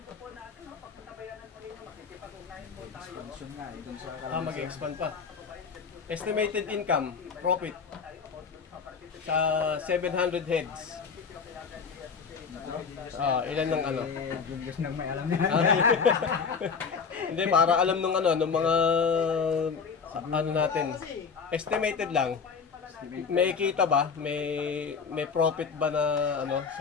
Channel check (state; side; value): quieter; right; 5.7 dB